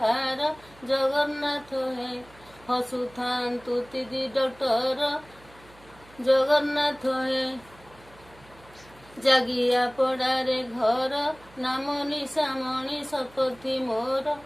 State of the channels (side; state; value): right; noise; hum, 25 dB below the sound